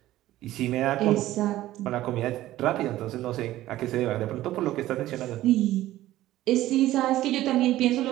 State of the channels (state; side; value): quieter; left; 15.0 dB